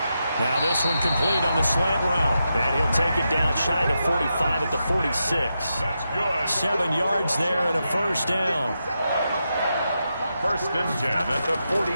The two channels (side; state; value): both; inverted; correlation -0.87